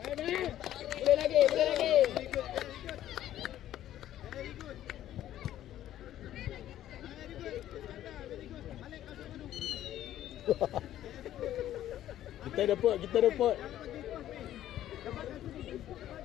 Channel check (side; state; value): right; quieter; 12.5 dB